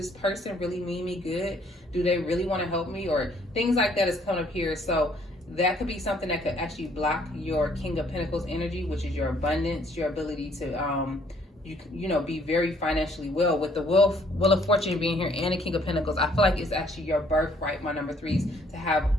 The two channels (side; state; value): both; normal; correlation 0.64